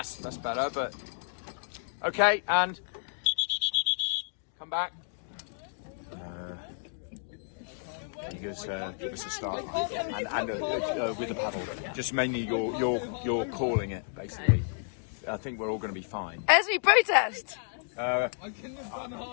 better, but okay, and come back. Give us a start and with the paddle. Just mainly you're calling it basically. I think we're all going to be fine. Esme, protest!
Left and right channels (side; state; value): right; silent; digital silence